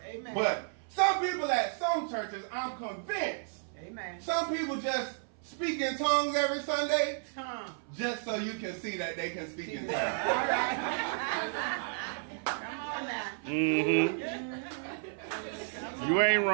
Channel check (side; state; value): left; silent; 56 dB below the other